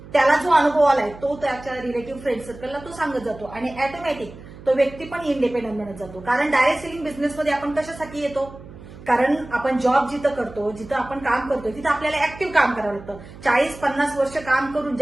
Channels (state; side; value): noise; right; hum, 17 dB below the sound